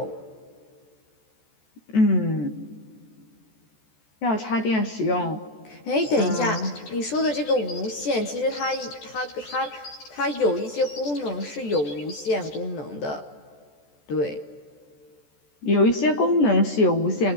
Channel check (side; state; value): right; late; 14 ms